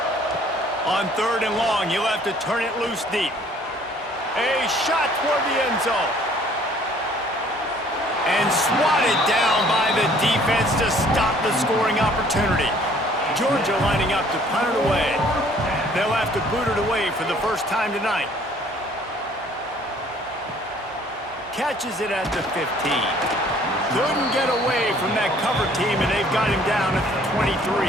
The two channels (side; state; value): both; normal; correlation 0.57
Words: On 3rd and long, you'll have to turn it loose deep. A shot toward the end zone. And swatted down by the defense to stop the scoring opportunity. Georgia lining up to punt it away. They'll have to boot it away for the first time tonight. Catches it at the 15. Couldn't get away from that cover team, and they've got him down at the 23.